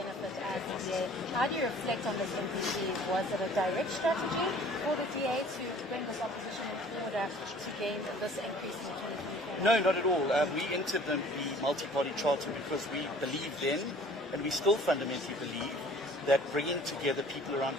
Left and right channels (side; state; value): both; normal; correlation 0.51